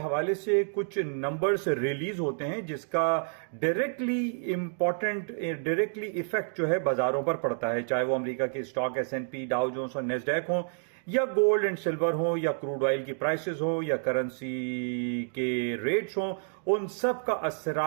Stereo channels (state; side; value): silent; left; digital silence